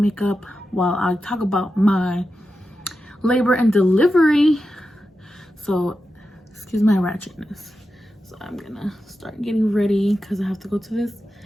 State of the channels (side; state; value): both; normal; correlation 0.90